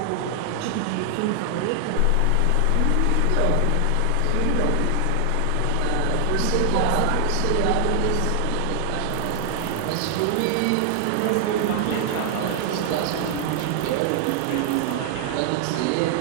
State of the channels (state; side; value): different; both; correlation 0.00